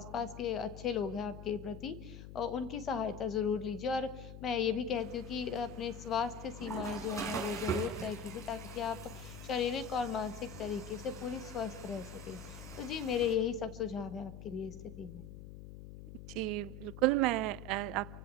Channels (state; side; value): noise; left; hum, 12 dB below the sound